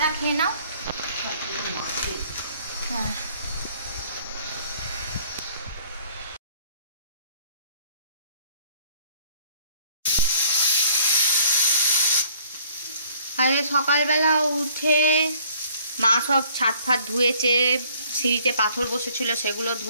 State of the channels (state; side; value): inverted; both; correlation -0.59